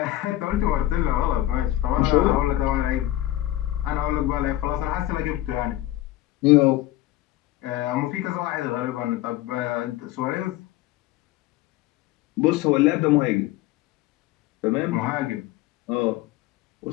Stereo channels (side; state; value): right; quieter; 15.2 dB